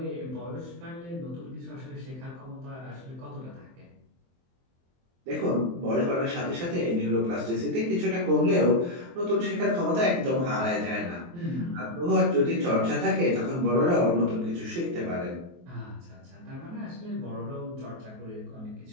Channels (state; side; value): late; left; 23 ms